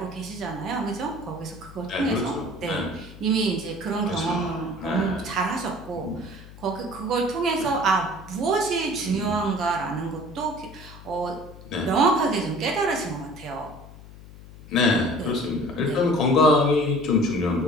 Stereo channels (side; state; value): left; noise; hum, 18 dB below the sound